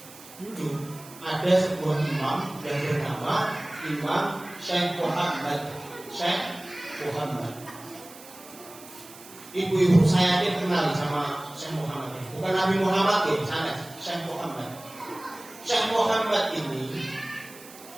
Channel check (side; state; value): right; noise; hiss, 19 dB below the sound